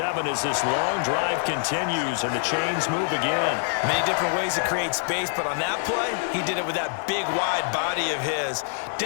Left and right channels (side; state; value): right; silent; digital silence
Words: as this long drive continues and the chains move again. Many different ways to create space, but on that play, he did it with that big, wide body of his.